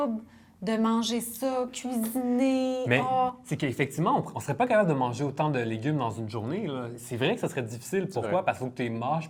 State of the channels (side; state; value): both; identical; correlation 1.00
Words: de manger ça, cuisiner? Mais c'est qu'effectivement, on ne serait pas capable de manger autant de légumes dans une journée. Là. C'est vrai que ça serait difficile. Pourquoi? Parce qu'il faut que tu les mâches